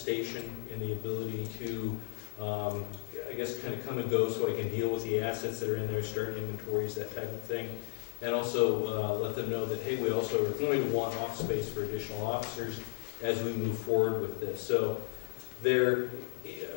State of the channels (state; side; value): silent; right; digital silence